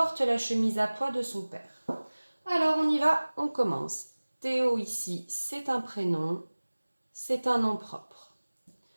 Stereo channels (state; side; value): inverted; both; correlation -1.00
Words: la chemise à pois de son père. Alors on y va, on commence. Théo ici, c'est un prénom, c'est un nom propre.